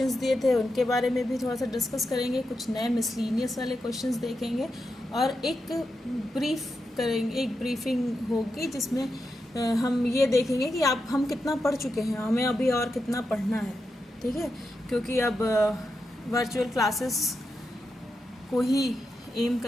दिए थे उनके बारे में भी थोड़ा सा डिस्कस करेंगे, कुछ नए मिसलीनियस वाले क्वेश्चंस देखेंगे और एक ब्रीफिंग होगी जिसमें हम ये देखेंगे कि हम कितना पढ़ चुके हैं, हमें अभी और कितना पढ़ना है। ठीक है, क्योंकि अब वर्चुअल क्लासेस को ही एम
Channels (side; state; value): both; normal; correlation 0.87